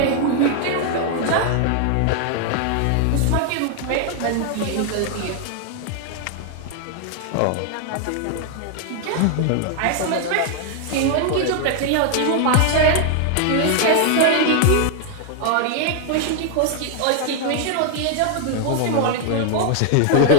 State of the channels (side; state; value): both; different; correlation 0.00